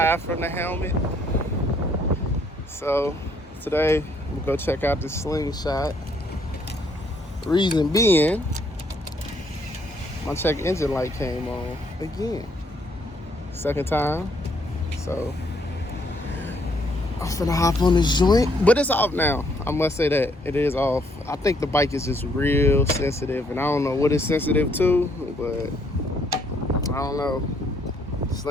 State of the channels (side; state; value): both; normal; correlation 0.68